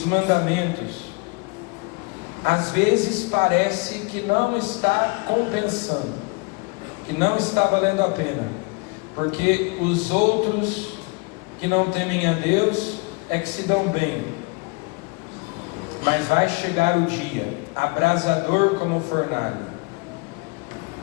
mandamentos. Às vezes parece que não está compensando, que não está valendo a pena, porque os outros que não temem a Deus é que se dão bem. Mas vai chegar o dia, abrasador como fornalha.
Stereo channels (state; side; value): quieter; right; 28.9 dB